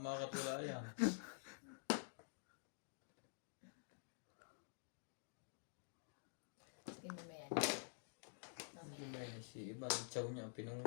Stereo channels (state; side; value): silent; right; digital silence